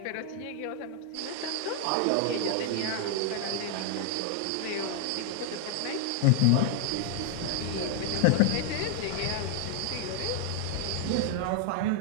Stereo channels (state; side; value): different; both; correlation 0.00